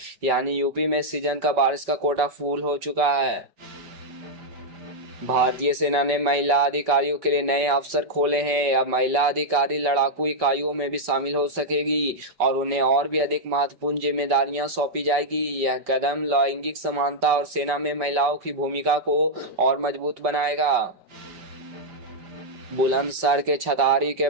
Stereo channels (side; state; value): left; late; 5.2 ms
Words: यानी यूपी में सीजन का बारिश का कोटा फुल हो चुका है। भारतीय सेना ने महिला अधिकारियों के लिए नए अवसर खोले हैं। अब महिला अधिकारी लड़ाकू इकाइयों में भी शामिल हो सकेगी और उन्हें और भी अधिक महत्वपूर्ण जिम्मेदारियां सौंपी जाएगी। यह कदम लैंगिक समानता और सेना में महिलाओं की भूमिका को और मजबूत बनाएगा। बुलंदशहर के छतारी के